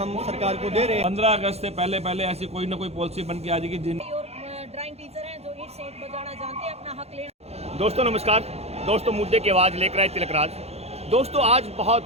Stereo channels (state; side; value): late; left; 0.30 ms